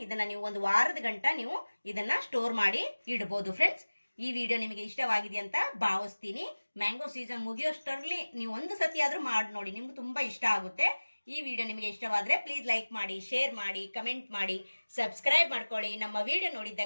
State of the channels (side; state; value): both; inverted; correlation -1.00